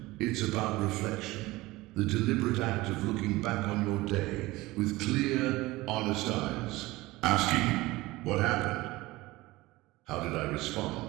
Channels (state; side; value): quieter; left; 19.8 dB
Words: It's about reflection. The deliberate act of looking back on your day with clear, honest eyes. Asking, what happened? How did I